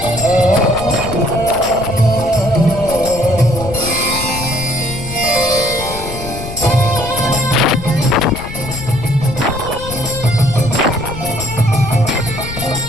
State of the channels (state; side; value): noise; left; rumble, 10 dB below the sound